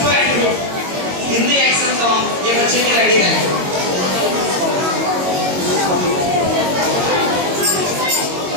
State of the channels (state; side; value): late; left; 22 ms